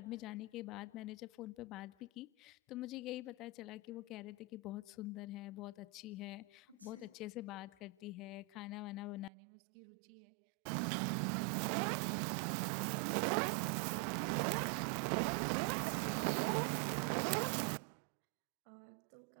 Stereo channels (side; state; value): left; drops out; at 9.3 s